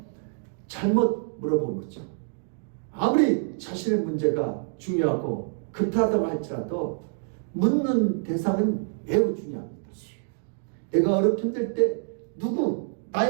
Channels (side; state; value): left; silent; digital silence